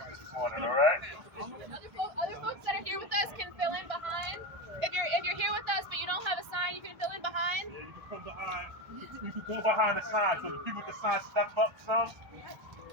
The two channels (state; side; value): late; left; 1.3 ms